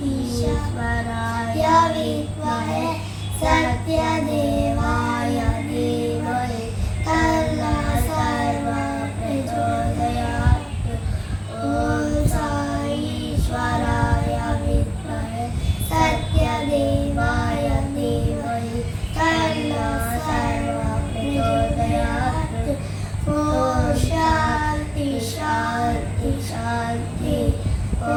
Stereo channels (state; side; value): identical; both; correlation 1.00